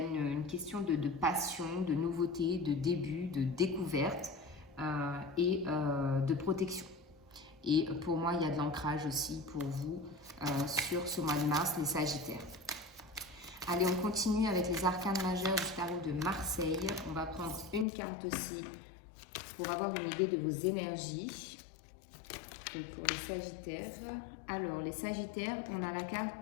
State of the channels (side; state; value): right; drops out; at 17.9 s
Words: question de passion, de nouveauté, de début, de découverte et de protection. Et pour moi, il y a de l'ancrage aussi pour vous sur ce mois de mars, les Sagittaires. Allez, on continue avec les arcanes majeurs du tarot de Marseille. On va prendre une carte aussi pour avoir une idée de vos énergies. Donc pour les Sagittaires. Alors, les Sagittaires, on a la